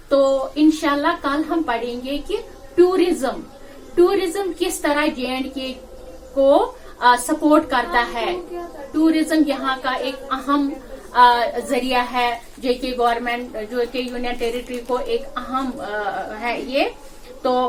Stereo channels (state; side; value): identical; both; correlation 1.00